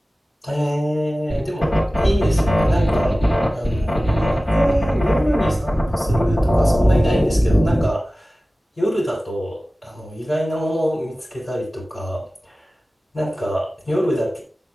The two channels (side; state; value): both; normal; correlation 0.97